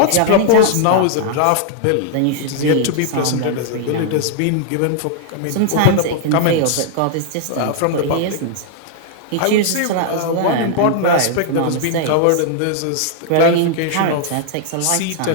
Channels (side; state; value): both; different; correlation 0.00